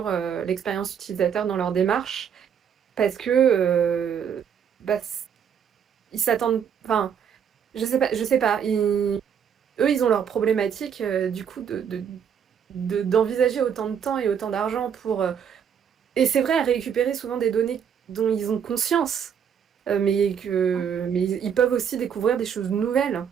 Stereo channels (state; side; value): quieter; left; 7.9 dB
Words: l'expérience utilisateur dans leur démarche parce que bah, ils s'attendent. Enfin, je sais pas. Eux, ils ont leur problématique du coup d'envisager autant de temps et autant d'argent pour. Et c'est vrai, à récupérer souvent des données dont ils ont conscience mais ils peuvent aussi découvrir des choses nouvelles.